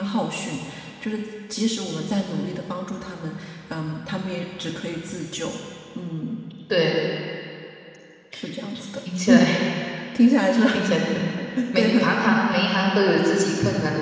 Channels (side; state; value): both; identical; correlation 1.00